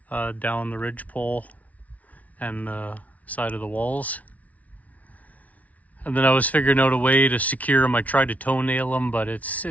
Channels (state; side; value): late; right; 0.070 ms